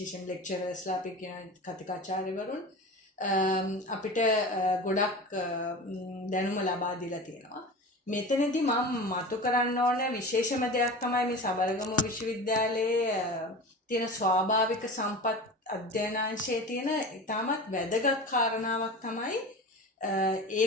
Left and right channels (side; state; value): both; normal; correlation 0.32